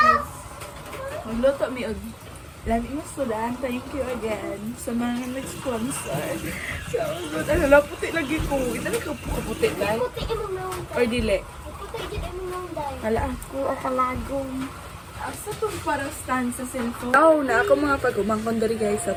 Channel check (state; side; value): identical; both; correlation 1.00